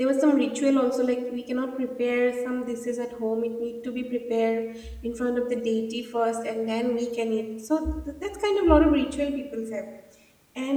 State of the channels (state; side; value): identical; both; correlation 1.00